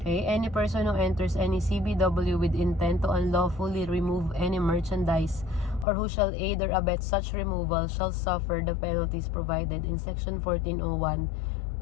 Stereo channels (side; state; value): right; drops out; at 5.9 s